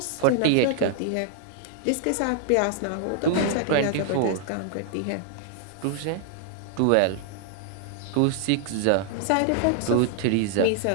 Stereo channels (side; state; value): both; different; correlation -0.01